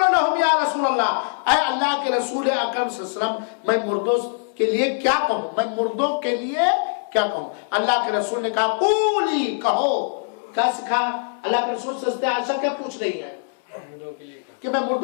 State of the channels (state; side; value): silent; right; 64 dB below the other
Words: یا رسول اللہ، اے اللہ کے رسول اکرم صلی اللہ علیہ وسلم، میں مردوں کے لیے کیا کہوں، میں مردوں کے لیے کیا کہوں؟ اللہ کے رسول نے کہا قولی، کہو. کیا سکھا؟ اللہ کے رسول سے عائشہ کیا پوچھ رہی ہے کہ میں